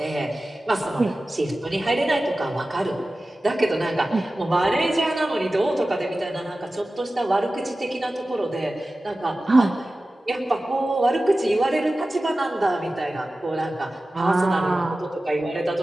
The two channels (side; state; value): both; normal; correlation 0.95